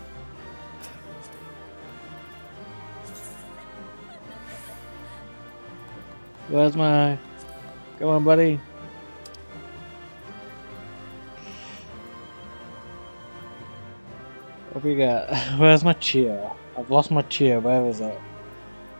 Where's my... Come on, buddy. What we got? Where's my cheer? I've lost my cheer. Where is it?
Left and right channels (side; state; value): both; inverted; correlation -1.00